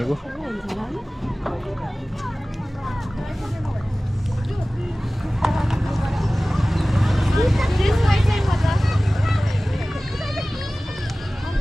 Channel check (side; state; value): both; normal; correlation 0.98